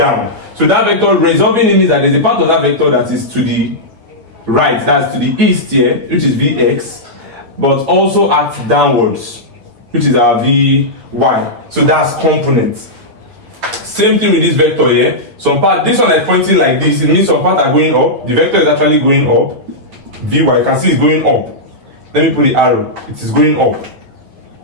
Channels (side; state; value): left; late; 9.2 ms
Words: So that vector resolving it means that there's a part of that vector that is to the right, that's to the east here, which is Vx, but also acts downwards, which is our Vy. So that's components. Same thing with this vector here. Some part, this one is pointing like this. It means some parts are going up. The vector is actually going up. Vy, you can see it's going up. Let me put the arrow. It is going up.